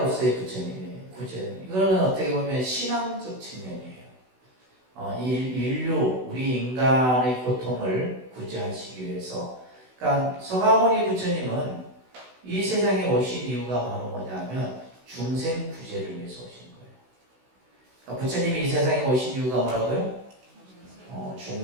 부처님이에요. 구제. 이거는 어떻게 보면 신앙적 측면이에요. 인류, 우리 인간의 고통을 구제하시기 위해서. 그러니까 서가모니 부처님은 이 세상에 오신 이유가 바로 뭐냐면 중생 구제를 위해서 오신 거예요. 그러니까 부처님이 이 세상에 오신 이유가 뭐라고요?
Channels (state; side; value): late; left; 16 ms